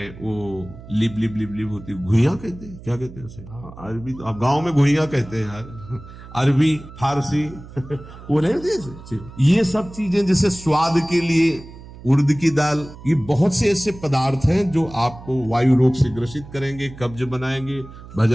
वो लिप लिप लिप लिप होती है, घुइयां कहते हैं, क्या कहते हैं उसे? हाँ, अरबी तो आप गांव में घुइयां कहते हैं यार, अरबी, फारसी वो नहीं होती। ये सब चीजें जैसे स्वाद के लिए उड़द की दाल, ये बहुत से ऐसे पदार्थ हैं जो आपको वायु रोग से ग्रसित करेंगे, कब्ज बनाएंगे,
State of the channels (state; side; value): noise; right; hum, 17 dB below the sound